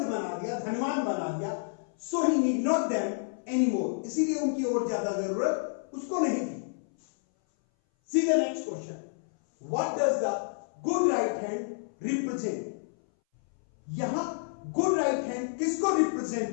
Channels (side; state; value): right; silent; 58 dB below the other